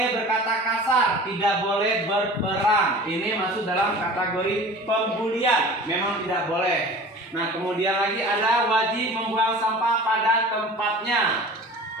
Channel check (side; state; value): both; normal; correlation 0.40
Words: berkata kasar, tidak boleh berperang. Ini masuk dalam kategori pembulian, memang tidak boleh. Nah, kemudian lagi ada wajib membuang sampah pada tempatnya.